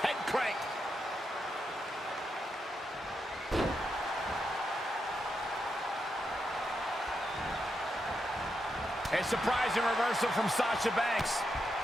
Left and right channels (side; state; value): both; normal; correlation 0.84